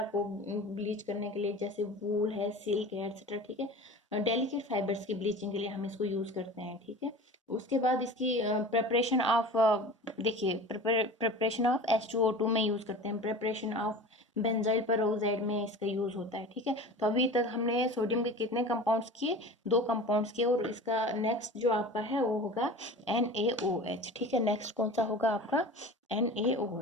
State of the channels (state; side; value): normal; both; correlation 0.36